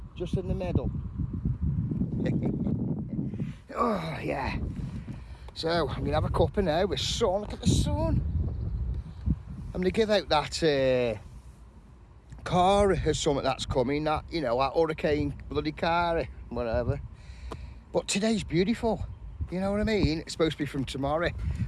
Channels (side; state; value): both; identical; correlation 1.00